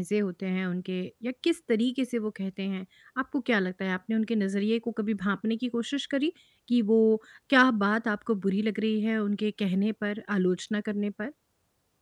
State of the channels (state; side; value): identical; both; correlation 1.00